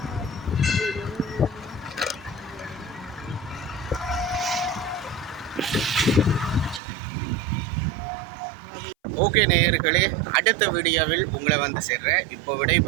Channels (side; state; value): left; drops out; at 6.8 s